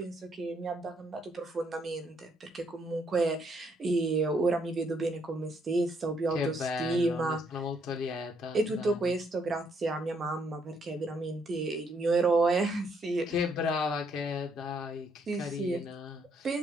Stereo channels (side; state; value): both; normal; correlation 0.71